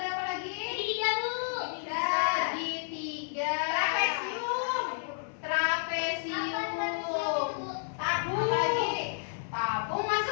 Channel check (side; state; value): right; silent; 57 dB below the other